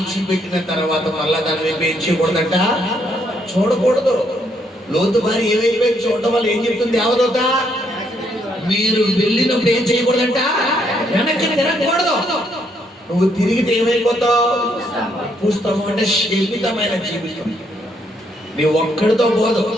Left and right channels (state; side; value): normal; both; correlation 0.73